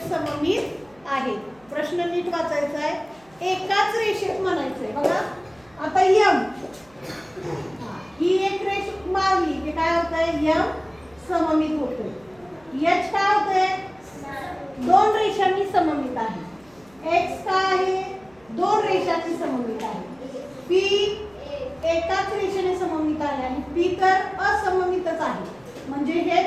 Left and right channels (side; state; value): right; noise; hum, 30 dB below the sound